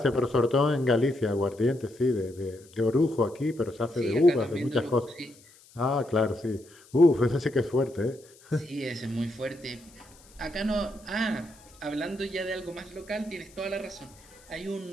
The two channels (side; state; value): left; noise; hiss, 26 dB below the sound